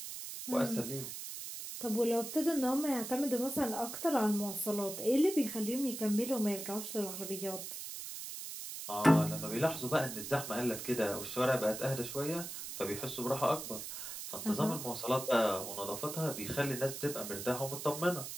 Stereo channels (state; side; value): noise; right; hiss, 8 dB below the sound